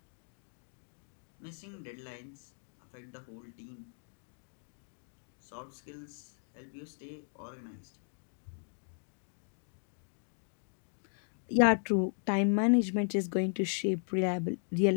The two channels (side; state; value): right; silent; 53 dB below the other